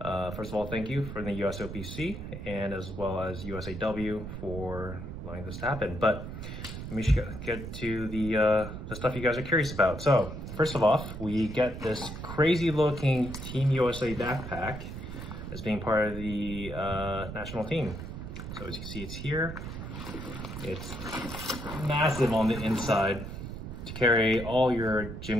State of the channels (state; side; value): noise; right; rumble, 8 dB below the sound